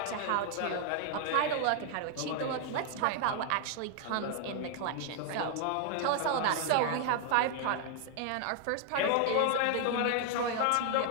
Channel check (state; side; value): different; both; correlation 0.00